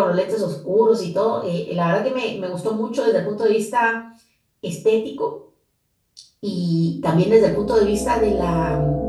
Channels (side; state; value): both; identical; correlation 1.00